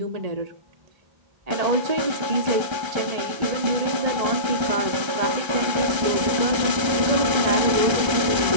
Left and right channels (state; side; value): late; left; 1.3 ms